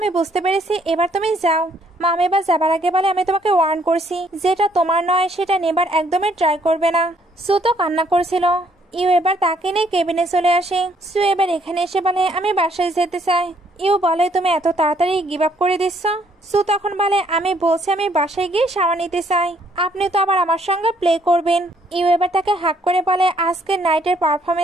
বুঝতে পেরেছি, এবার তুমি যাও। মম এবার যাবার আগে বলে আমি তোমাকে ওয়ার্ন করছি, যেটা তোমার নয় সেটা নেবার একদমই ট্রাই করবে না। সু তো কান্না করছিল। ইউ এবার তাকে নিয়ে কেবিনে চলে আসে। সু এবার এখানে এসে বলে আমি বাসায় যেতে চাই। ইউ বলে তুমি এত তাড়াতাড়ি গিভ আপ করে দিচ্ছ? সু তখন বলে আমি বলছি আমি বাসায় গিয়ে শাওয়ার নিতে চাই, আপনি তো আবার আমার সঙ্গে প্লে করবেন। ইউ এবার তাকে হাক করে বলে আজকের নাইটের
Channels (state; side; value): normal; both; correlation 0.67